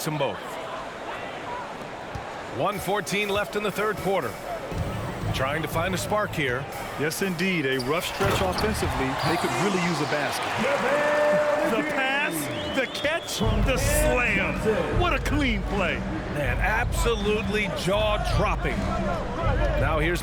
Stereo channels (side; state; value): both; identical; correlation 1.00